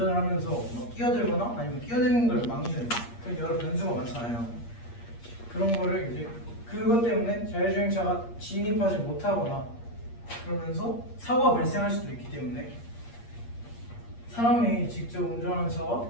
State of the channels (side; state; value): right; late; 8.5 ms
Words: 하면서 뭐 끼어들거나 아니면 끼어드는 걸 막는 그런 여러 변수가 많잖아요. 그런 거를 이제 그것 때문에 자율주행차가 진입하지 못하거나 그러면서 사고가 발생할 수도 있기 때문에 사람이 직접 운전하는 차와